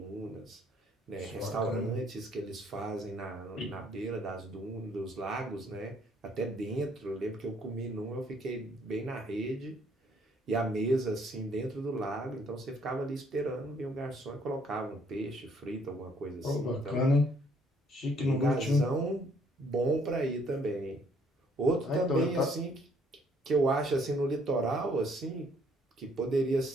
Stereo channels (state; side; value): normal; both; correlation 0.65